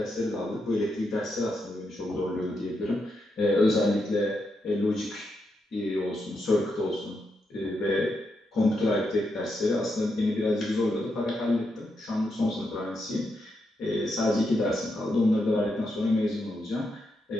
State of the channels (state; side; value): normal; both; correlation 0.83